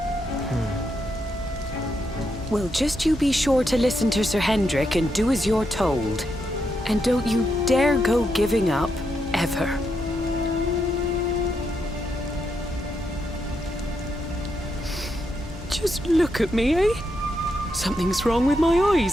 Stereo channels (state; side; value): normal; both; correlation 0.81